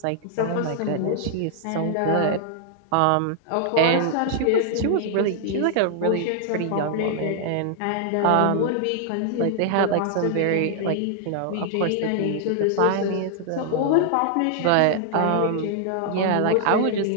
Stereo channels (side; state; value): both; different; correlation 0.00